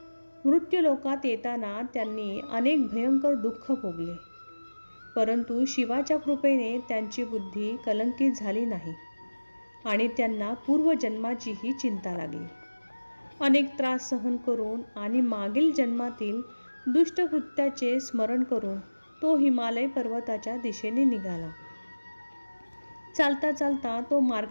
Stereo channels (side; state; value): both; inverted; correlation -1.00